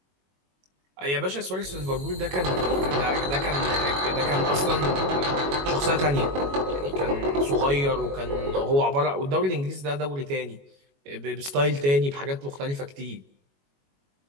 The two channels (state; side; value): late; left; 21 ms